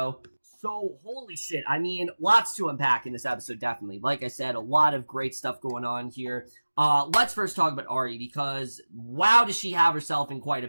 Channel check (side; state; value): both; inverted; correlation -1.00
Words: So, holy shit. I mean, lots to unpack in this episode, definitely. Like I said, a lot of great stuff going on here. Let's first talk about Aria, because wow, does she have herself in quite a